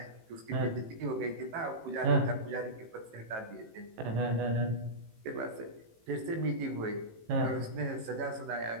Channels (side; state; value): left; late; 18 ms